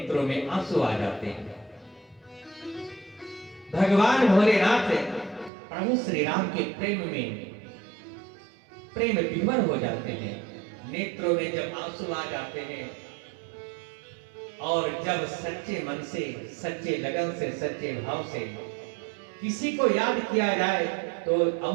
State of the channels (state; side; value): drops out; left; at 5.5 s